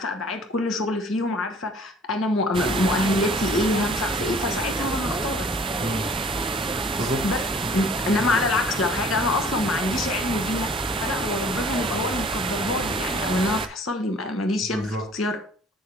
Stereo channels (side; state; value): both; normal; correlation 0.52